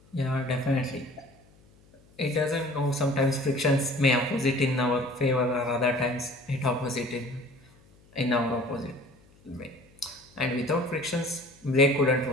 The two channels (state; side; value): noise; left; hum, 29 dB below the sound